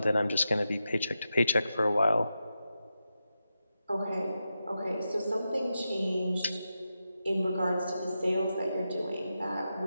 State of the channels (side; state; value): both; inverted; correlation -0.89